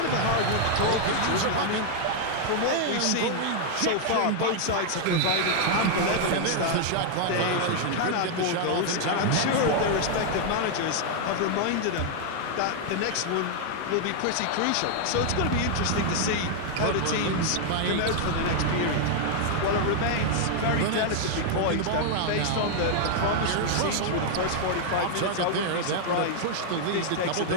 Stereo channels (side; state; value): both; different; correlation 0.00